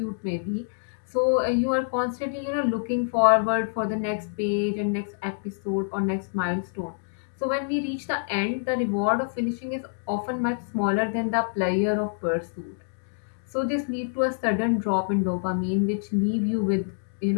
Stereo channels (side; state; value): right; silent; digital silence